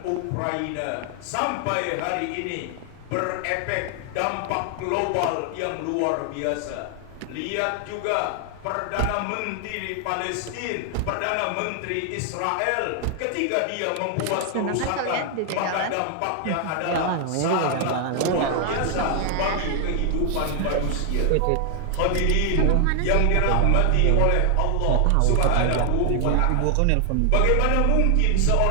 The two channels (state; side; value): different; both; correlation 0.00